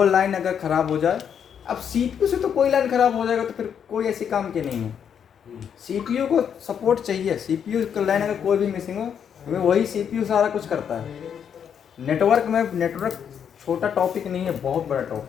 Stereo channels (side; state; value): right; quieter; 8.0 dB